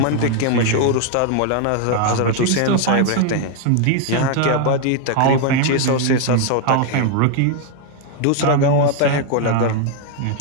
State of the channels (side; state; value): both; different; correlation 0.00